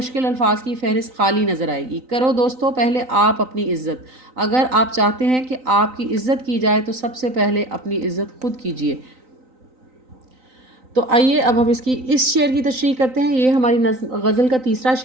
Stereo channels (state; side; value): late; left; 3.9 ms